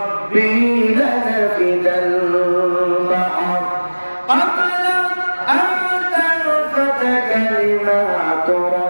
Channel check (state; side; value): inverted; both; correlation -1.00